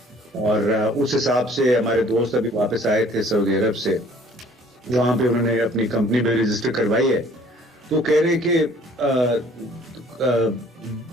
اور اس حساب سے ہمارے دوست ابھی واپس آئے تھے سعودی عرب سے, وہاں پہ انہوں نے اپنی کمپنی بھی رجسٹر کروائی ہے, تو کہہ رہے کہ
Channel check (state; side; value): normal; both; correlation 0.55